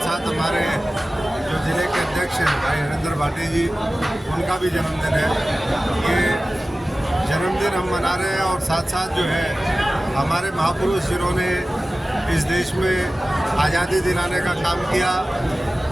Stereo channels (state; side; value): normal; both; correlation 0.96